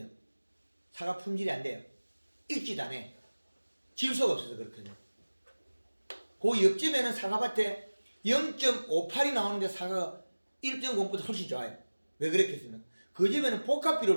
사과 품질이 안 돼요. 익지도 않아요. 질소가 없어서 그렇거든요. 그 옆집에는 사과밭에 0.58이 나오는데 사과가 1.0보다 훨씬 좋아요. 왜 그랬겠습니까? 그 집에는 복합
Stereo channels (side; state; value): both; inverted; correlation -1.00